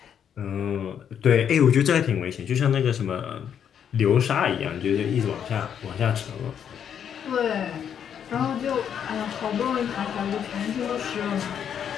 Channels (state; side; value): quieter; right; 8.5 dB